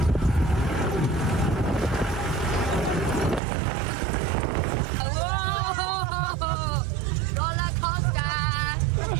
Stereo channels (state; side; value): drops out; left; at 3.4 s